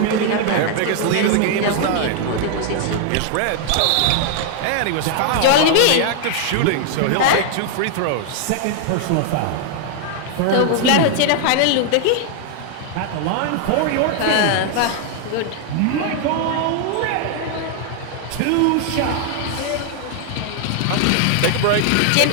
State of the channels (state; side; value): different; both; correlation 0.00